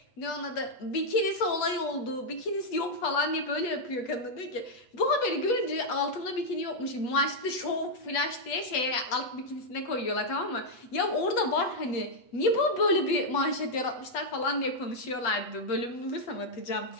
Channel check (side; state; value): right; late; 8.2 ms